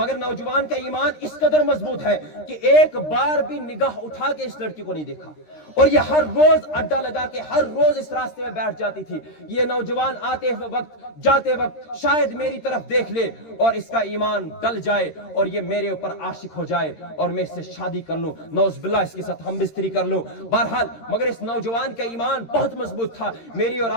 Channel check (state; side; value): late; right; 13 ms